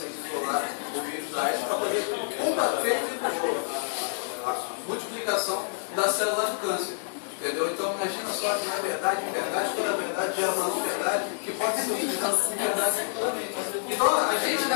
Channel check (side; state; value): right; silent; digital silence